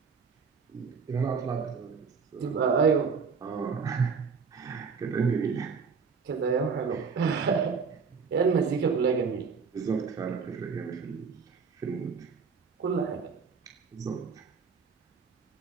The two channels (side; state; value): left; quieter; 5.5 dB